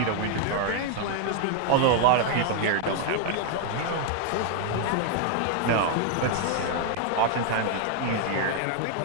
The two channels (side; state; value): both; different; correlation 0.00